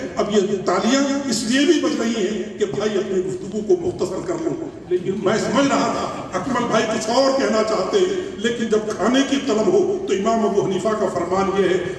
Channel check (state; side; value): identical; both; correlation 1.00